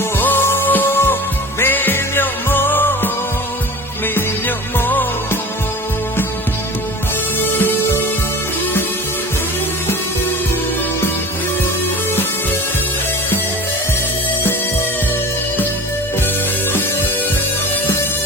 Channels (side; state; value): both; normal; correlation 0.37